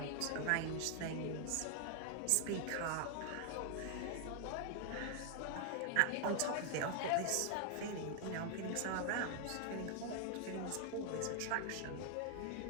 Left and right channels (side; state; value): both; different; correlation 0.00